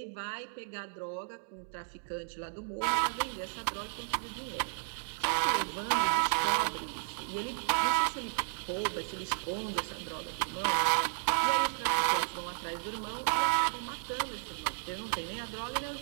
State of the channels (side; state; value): left; silent; digital silence